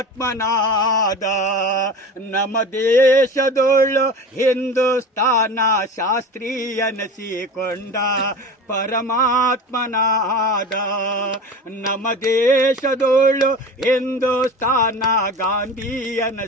ನಮ್ಮ ದೇಶದೊಳು ಹಿಂದೂಸ್ತಾನ ಶಾಸ್ತ್ರೀಯನಸಿಕೊಂಡ ಪರಮಾತ್ಮನಾದ. ನಮ್ಮ ದೇಶದೊಳು ಹಿಂದೂಸ್ತಾನ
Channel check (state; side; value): normal; both; correlation 0.33